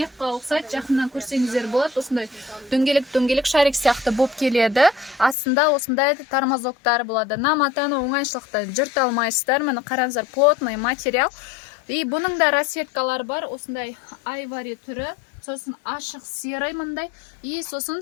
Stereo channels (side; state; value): right; drops out; at 5.4 s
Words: ұқсайды. Жақыннан көрсеңіздер болады. Осындай дөңгелек шарик сияқты болып келеді. Астында осындай тормозоктар болады. Матаны оңайшылықта жырта алмайсыздар. Міне қараңыздар, плотный материал. И бұның да расцветкалары бар. Осындай айвари түрі, сосын ашық серый мындай. И